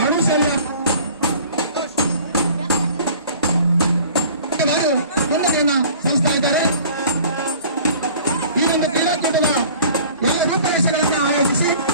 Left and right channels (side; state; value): both; inverted; correlation -0.48